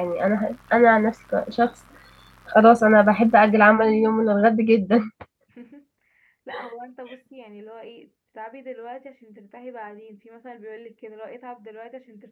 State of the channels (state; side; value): identical; both; correlation 1.00